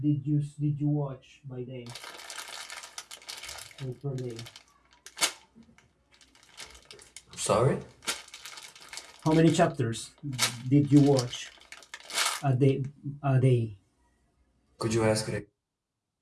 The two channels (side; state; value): both; identical; correlation 1.00